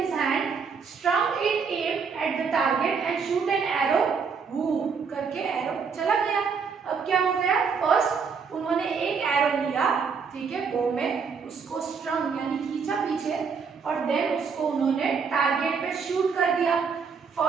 hand, strung it aim at the target and shoot an arrow, woo करके एरो चला गया। अब क्या हो गया, फर्स्ट उन्होंने एक एरो लिया, ठीक है, बो में उसको स्ट्रंग यानी खींचा पीछे और देन उसको उन्होंने टारगेट पे शूट कर दिया।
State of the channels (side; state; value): left; quieter; 5.8 dB